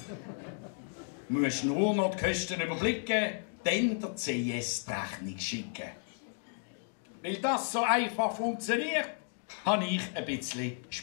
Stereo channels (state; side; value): silent; right; 56 dB below the other